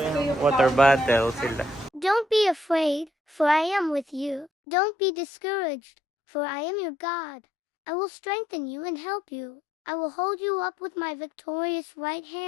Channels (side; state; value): right; drops out; at 4.5 s